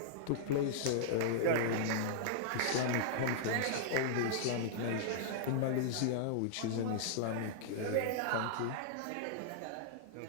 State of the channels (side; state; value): both; different; correlation -0.01